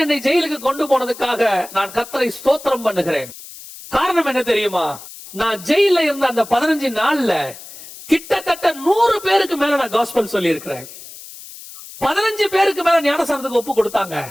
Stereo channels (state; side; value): noise; left; hiss, 16 dB below the sound